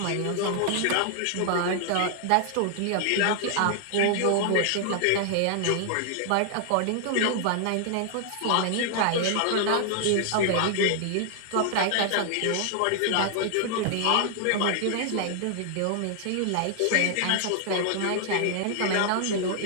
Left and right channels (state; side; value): different; both; correlation 0.00